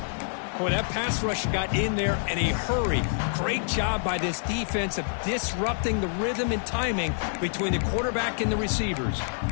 Boy, that pass rush got in there in a hurry. Great job by this defense of disrupting the rhythm and timing between the quarterback and the receivers.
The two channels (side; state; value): right; silent; digital silence